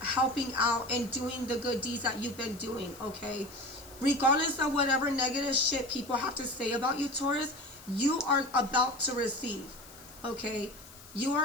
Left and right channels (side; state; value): left; noise; hiss, 20 dB below the sound